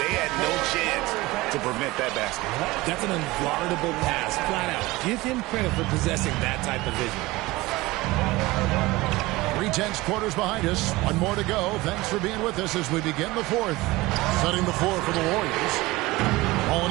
had no chance to prevent that basket. That's an unguardable pass, flat out. Give him credit for possessing that type of vision. 3/10 quarters behind us. One more to go. Thanks for being with us as we begin the fourth. Setting the floor for the Warriors.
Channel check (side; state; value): left; quieter; 20.4 dB